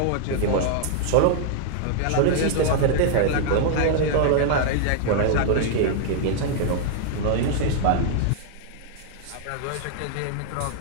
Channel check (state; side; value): different; both; correlation -0.01